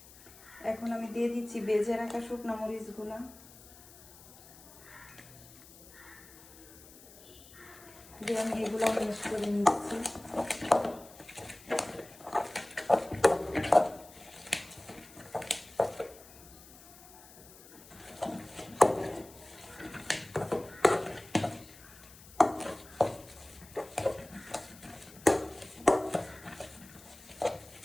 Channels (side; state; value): left; noise; hiss, 21 dB below the sound